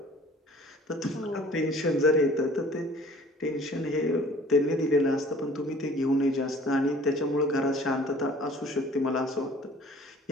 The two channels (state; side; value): normal; both; correlation 0.51